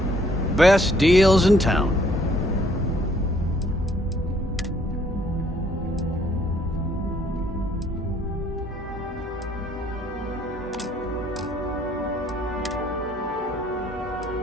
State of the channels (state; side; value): normal; both; correlation 0.64